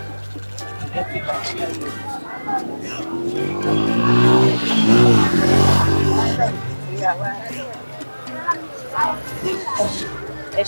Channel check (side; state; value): both; inverted; correlation -1.00